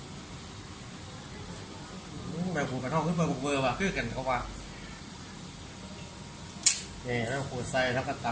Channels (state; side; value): identical; both; correlation 1.00